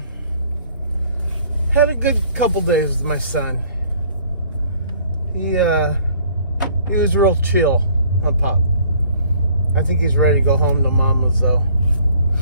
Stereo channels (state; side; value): inverted; both; correlation -0.57